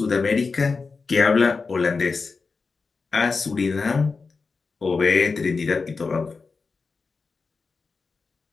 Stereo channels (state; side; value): quieter; right; 4.5 dB